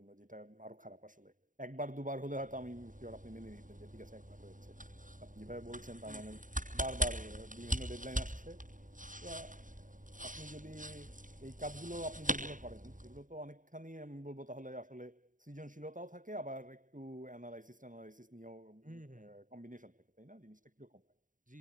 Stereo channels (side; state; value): left; late; 0.38 ms